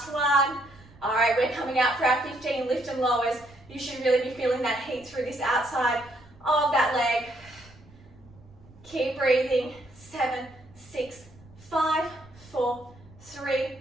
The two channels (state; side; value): noise; right; rumble, 24 dB below the sound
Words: 1. All right, we're coming out for our 15 lift and lowers. You should really be feeling that heat through this outside of that leg. Keep breathing. 7, 6, 5, 4, 3,